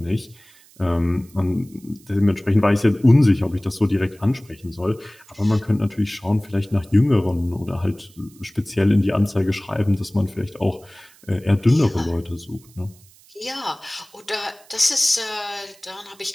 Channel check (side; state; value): right; noise; hiss, 27 dB below the sound